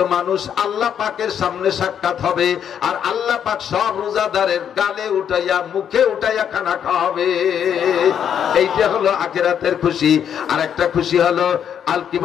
মানুষ আল্লাহ পাকের সামনে সাক্ষাৎ হবে, আর আল্লাহ পাক সব রোজাদারের গালে উঠাইয়া মুখে উঠাইয়া খানা খাওয়াবে। এইটা হলো আখিরাতের খুশি। আর একটা খুশি হলো আল কি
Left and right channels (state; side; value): quieter; right; 8.7 dB